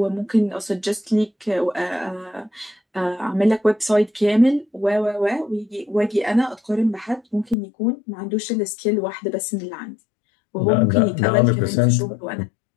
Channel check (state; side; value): drops out; right; at 7.6 s